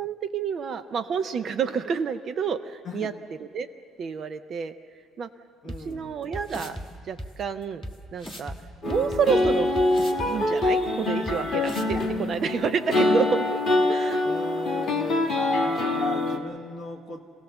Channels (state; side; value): normal; both; correlation 0.70